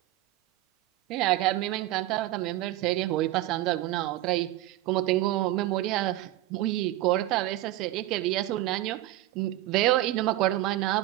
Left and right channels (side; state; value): left; quieter; 15.9 dB